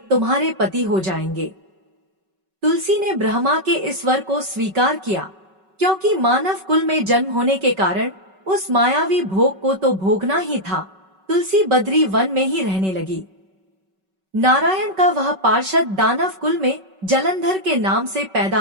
तुम्हारे पति हो जाएंगे। तुलसी ने ब्रह्मा के इस वर को स्वीकार किया, क्योंकि मानव कुल में जन्म होने के कारण उस मायावी भोग को तो भोगना ही था। तुलसी बद्री वन में ही रहने लगी। नारायण का वह पार्षद दानव कुल में जलंधर के नाम से पैदा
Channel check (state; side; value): late; left; 5.3 ms